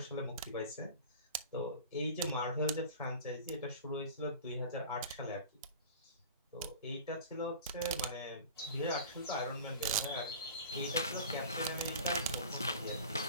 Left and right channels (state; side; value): inverted; both; correlation -0.38